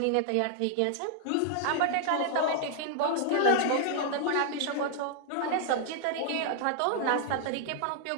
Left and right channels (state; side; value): different; both; correlation -0.01